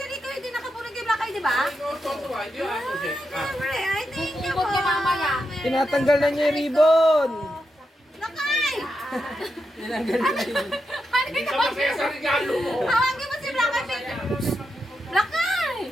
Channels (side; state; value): both; normal; correlation 0.86